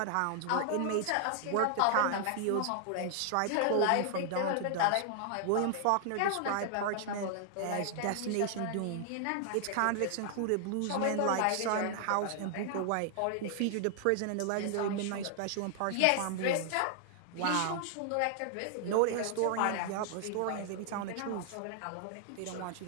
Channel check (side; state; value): both; different; correlation 0.00